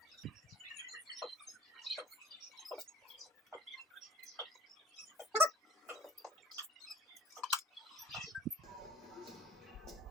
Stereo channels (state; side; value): normal; both; correlation 0.49